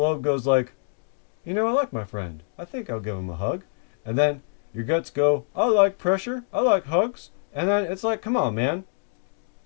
goes like, you know, I like my friend. I think I'll give him a hug. And then your guts go, I like pressure. I like hugs. And then it's like, come on, man.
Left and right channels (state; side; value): silent; right; digital silence